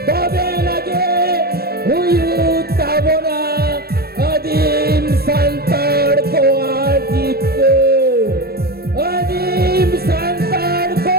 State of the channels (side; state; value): left; late; 0.45 ms